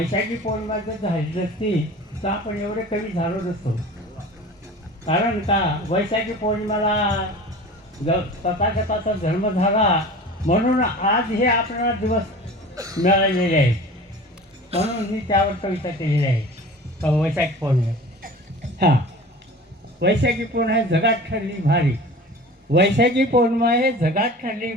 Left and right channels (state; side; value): normal; both; correlation 0.39